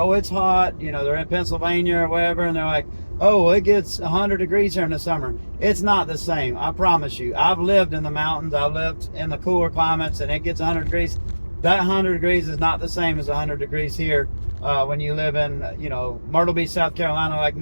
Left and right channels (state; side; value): inverted; both; correlation -1.00